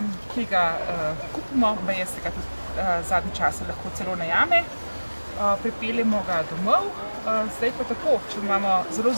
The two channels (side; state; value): both; inverted; correlation -1.00